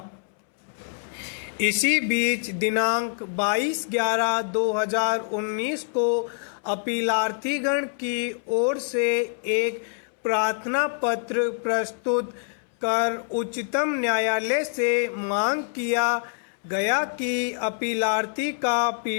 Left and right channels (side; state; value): right; silent; 61 dB below the other